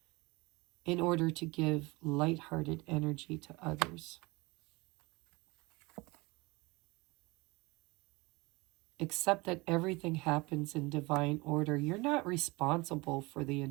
in order to give lighthearted energy to others. Accept that everything happens in divine order. You're not responsible for the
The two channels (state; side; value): quieter; left; 24.2 dB